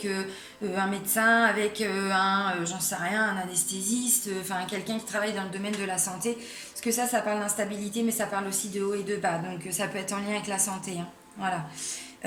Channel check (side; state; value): both; identical; correlation 1.00